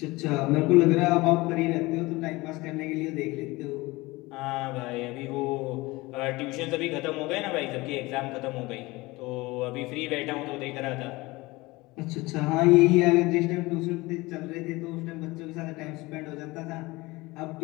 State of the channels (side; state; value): right; quieter; 21.8 dB